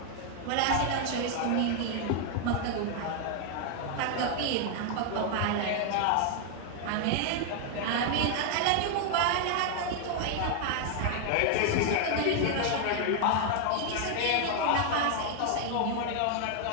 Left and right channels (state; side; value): different; both; correlation 0.00